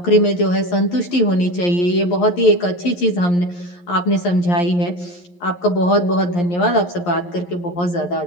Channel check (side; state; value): right; late; 11 ms